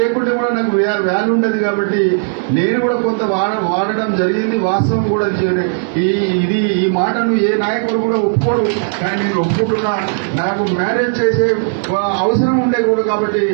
కూడా నాకు వాల్యూ ఉండదు. కాబట్టి నేను కూడా కొంత వాడడం జరిగింది. వాస్తవం కూడా ఈ మాటను ఏ నాయకుడు కూడా ఒప్పుకోడు. కానీ నేను ఒప్పుకుంటున్నా. నాకు మ్యారేజ్ చేసే అవసరం ఉండే కూడా కాబట్టి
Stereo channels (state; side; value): silent; left; digital silence